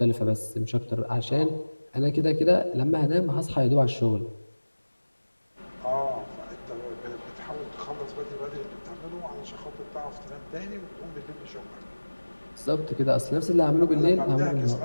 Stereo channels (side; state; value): both; inverted; correlation -1.00